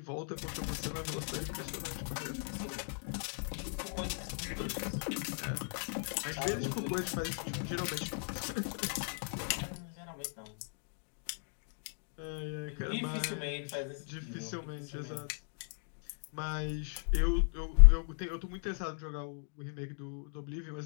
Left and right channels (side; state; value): right; silent; 53 dB below the other